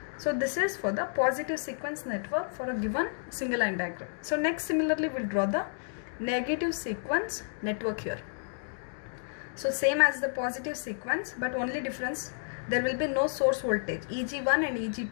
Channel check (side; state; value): right; silent; digital silence